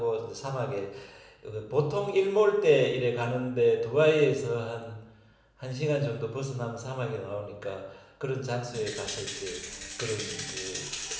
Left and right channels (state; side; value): identical; both; correlation 1.00